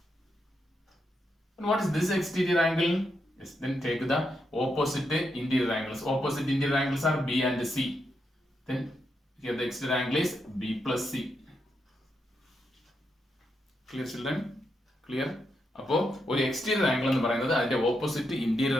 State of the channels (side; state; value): both; normal; correlation 0.82